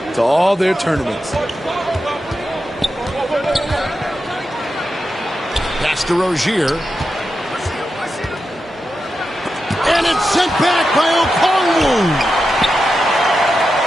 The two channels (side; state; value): both; normal; correlation 0.89